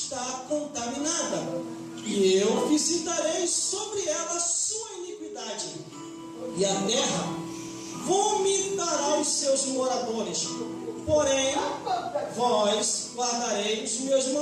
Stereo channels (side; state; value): both; identical; correlation 1.00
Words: contaminada, e eu visitarei sobre ela a sua iniquidade, e a terra vomitará os seus moradores. Porém, vós guardareis os meus